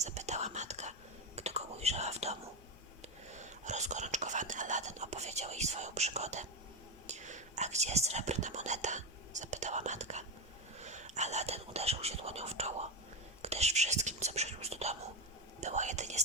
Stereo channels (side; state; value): both; normal; correlation 0.13